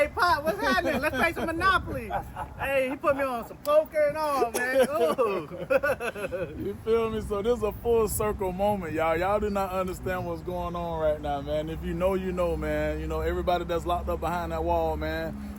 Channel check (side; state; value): both; identical; correlation 1.00